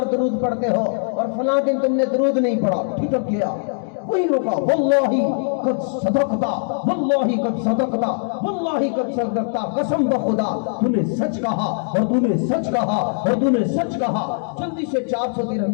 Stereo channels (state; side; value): silent; right; digital silence